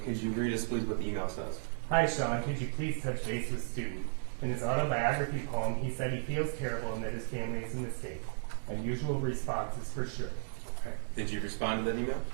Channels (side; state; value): left; silent; digital silence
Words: could you read us, please, what the email says? "Hi, Sean. Could you please touch base with student? In his autobiography poem, he said he feels terrible and that his family is a mistake. Unusual responses for sure." Okay. Did you respond to that email?